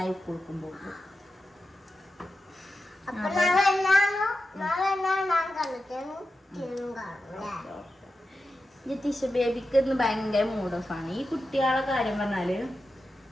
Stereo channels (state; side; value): normal; both; correlation 0.91